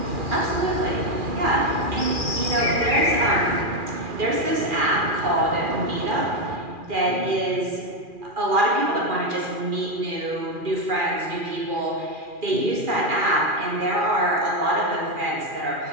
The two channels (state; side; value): late; left; 2.4 ms